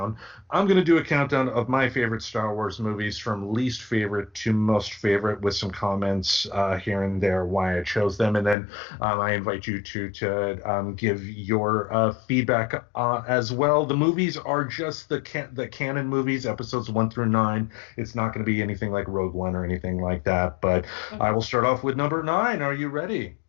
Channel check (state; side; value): drops out; right; at 8.6 s